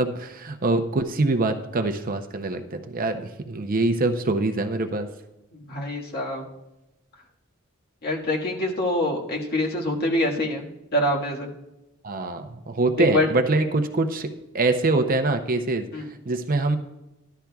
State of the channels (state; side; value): normal; both; correlation 0.37